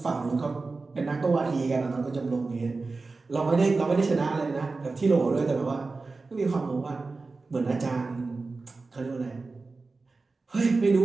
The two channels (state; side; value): quieter; left; 3.8 dB